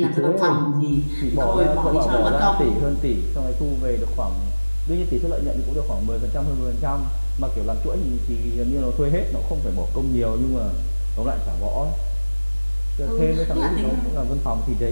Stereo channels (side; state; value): both; inverted; correlation -1.00